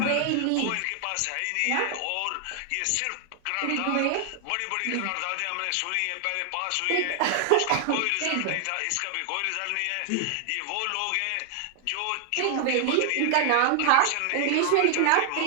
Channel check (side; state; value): both; different; correlation 0.00